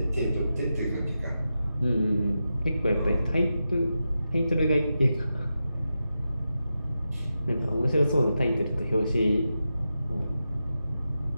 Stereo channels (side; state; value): both; inverted; correlation -0.90